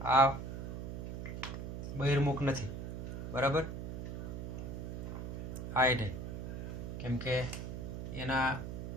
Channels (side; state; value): right; noise; hum, 5 dB below the sound